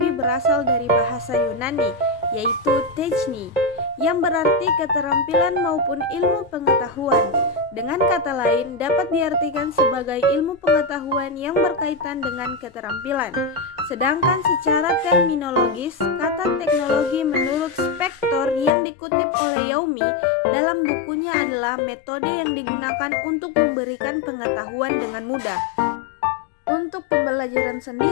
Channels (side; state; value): right; drops out; at 18.7 s